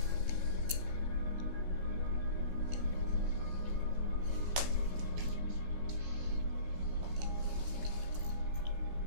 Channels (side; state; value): left; late; 15 ms